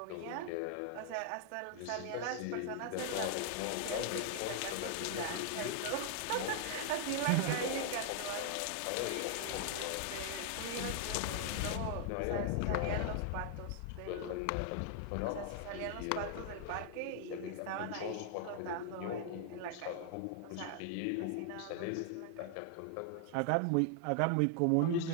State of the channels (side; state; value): both; different; correlation 0.00